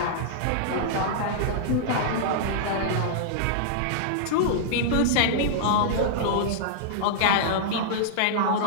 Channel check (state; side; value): different; both; correlation -0.02